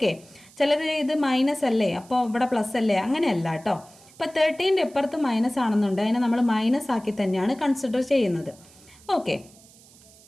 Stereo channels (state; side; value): noise; right; hiss, 25 dB below the sound